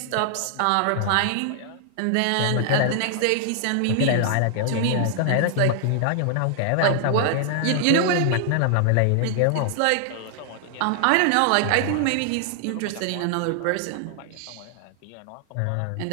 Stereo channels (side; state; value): both; different; correlation 0.00